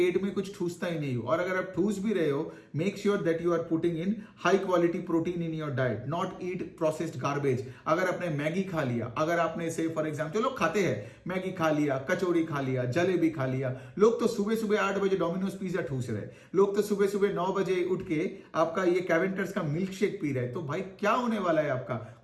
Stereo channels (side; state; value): both; identical; correlation 1.00